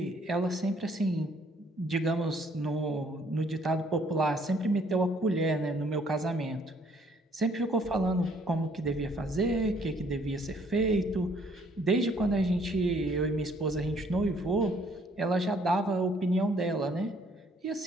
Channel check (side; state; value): both; normal; correlation 0.63